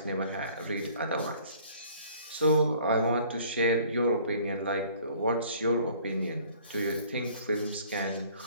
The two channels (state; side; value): inverted; both; correlation -0.54